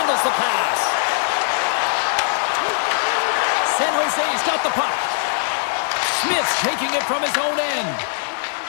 the pass. San Jose's got the puck. Smith's taking it from his own end.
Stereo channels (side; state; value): right; silent; digital silence